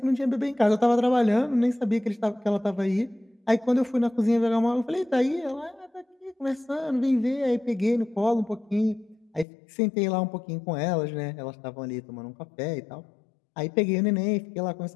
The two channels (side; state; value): right; drops out; at 9.5 s